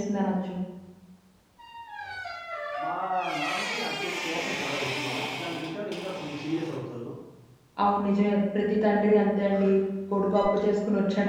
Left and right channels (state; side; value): identical; both; correlation 1.00